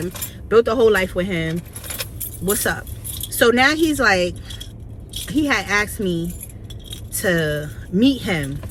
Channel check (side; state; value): both; identical; correlation 1.00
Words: Built a whole life with him. What's up? So now he's like, he had asked me to meet him,